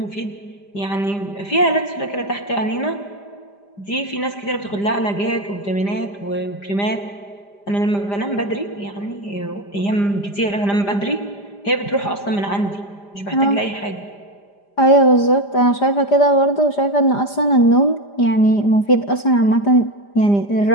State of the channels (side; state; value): right; late; 5.0 ms